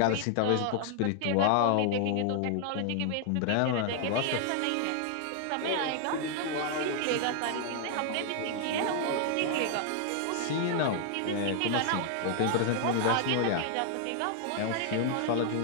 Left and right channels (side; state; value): both; different; correlation 0.00